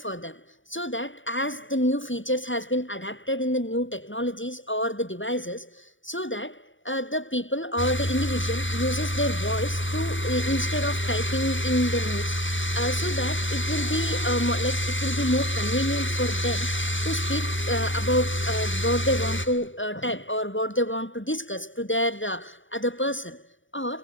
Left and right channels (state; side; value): late; right; 0.56 ms